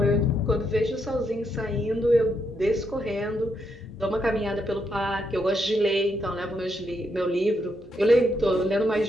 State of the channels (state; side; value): normal; both; correlation 0.78